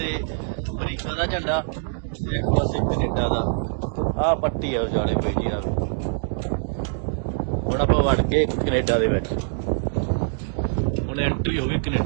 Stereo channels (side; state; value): left; silent; digital silence